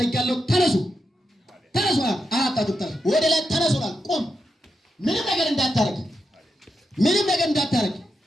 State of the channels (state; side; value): normal; both; correlation 0.86